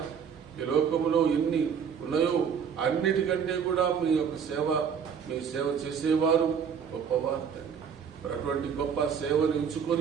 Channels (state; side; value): quieter; left; 7.1 dB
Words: ఈ లోకములో ఎన్ని ఉన్నాయో అన్నిటికంటే కూడా మీ యొక్క సేవ, మీ సేవ చేసేవారు గొప్పవారు తండ్రి. మరి అటువంటి గొప్ప సేవను